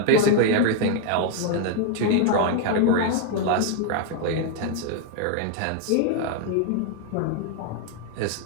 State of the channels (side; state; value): both; different; correlation 0.00